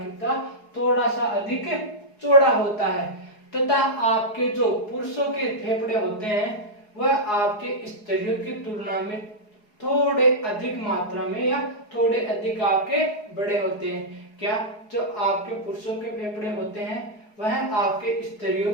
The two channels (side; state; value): right; late; 4.7 ms